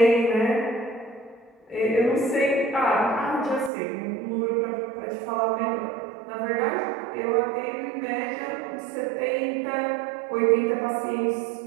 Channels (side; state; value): left; drops out; at 3.7 s